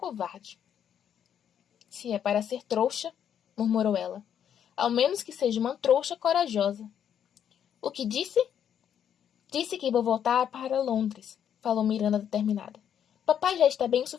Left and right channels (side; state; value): right; quieter; 9.0 dB